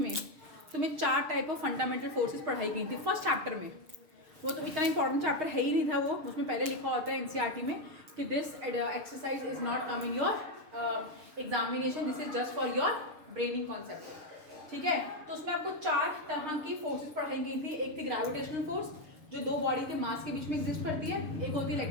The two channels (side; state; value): left; late; 6.4 ms